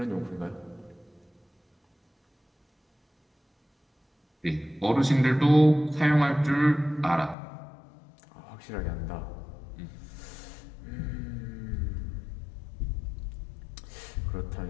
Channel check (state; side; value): drops out; right; at 7.4 s